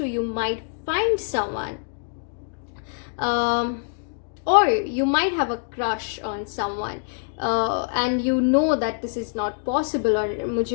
you might find someone, or you might have a crush on someone, and you know that this is not possible, or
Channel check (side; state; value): right; silent; digital silence